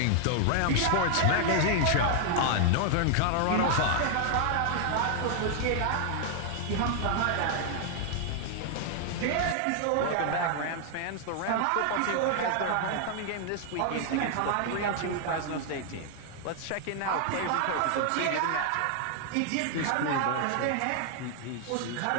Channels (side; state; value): both; different; correlation 0.00